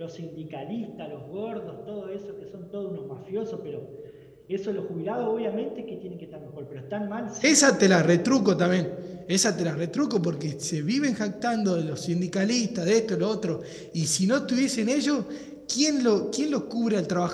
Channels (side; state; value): both; identical; correlation 1.00